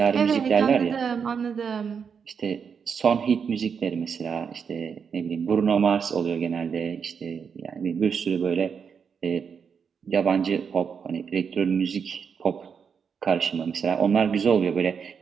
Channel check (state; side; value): quieter; left; 6.5 dB